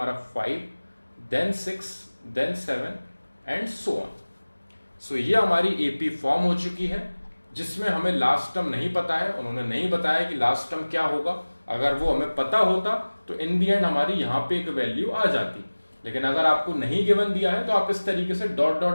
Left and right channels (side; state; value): both; inverted; correlation -1.00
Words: 5, then 6, then 7 and so on. So ये हमारी एपी फॉर्म हो चुकी है, जिसमें हमें लास्ट टर्म नहीं पता है, उन्होंने नहीं बताया कि लास्ट टर्म क्या होगा। अगर वो हमें पता होता तो इन दी एंड हमारी यहाँ पे एक वैल्यू आ जाती, लेकिन अगर आपको नहीं गिवन दिया है तो आप इस तरीके से डॉट